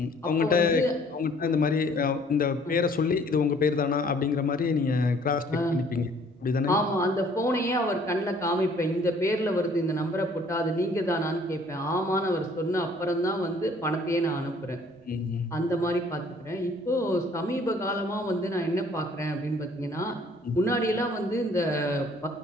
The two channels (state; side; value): normal; both; correlation 0.58